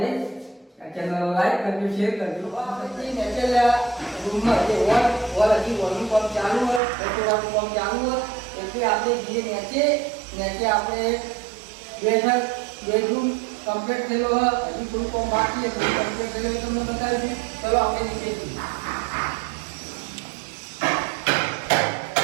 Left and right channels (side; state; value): left; drops out; at 6.8 s